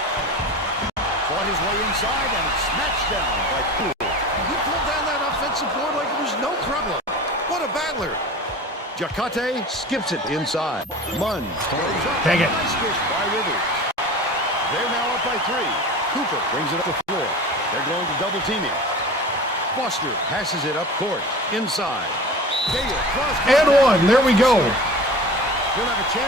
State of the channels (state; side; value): normal; both; correlation 0.36